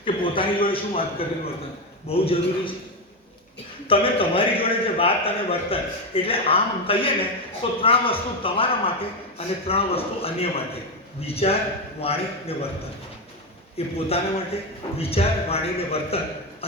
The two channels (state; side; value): normal; both; correlation 0.11